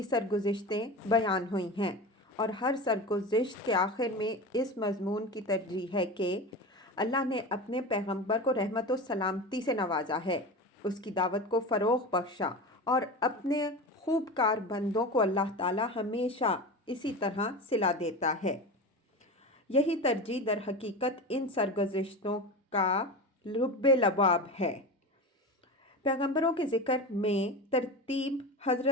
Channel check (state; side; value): normal; both; correlation 0.27